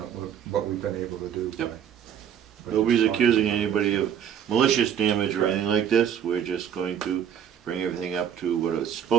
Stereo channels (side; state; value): left; quieter; 8.9 dB